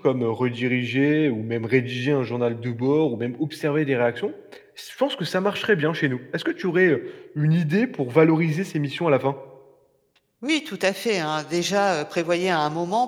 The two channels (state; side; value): identical; both; correlation 1.00